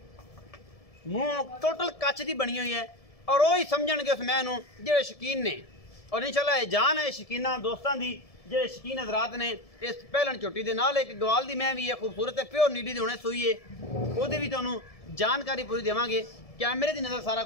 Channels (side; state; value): right; late; 1.7 ms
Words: मूँह टोटल कच की बनी हुई है और वही समझणगे उस मैं जेडे शकीन ने और इंशाल्लाह जान है शकीना दोस्तों की जेडे शकीन हजरात ने इस पहलन झोटी के नाल एक गवाल की मैं भी है खूबसूरत है प्योर नीली दी हुणे सूई है वो भी तुहानूं जानकारी पूरी देवांगे। कैमरे की नज़र सारा